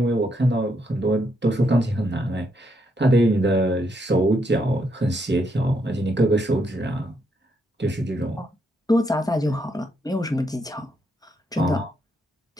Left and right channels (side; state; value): both; normal; correlation 0.77